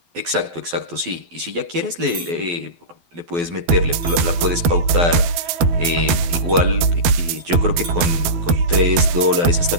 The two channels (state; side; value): late; left; 12 ms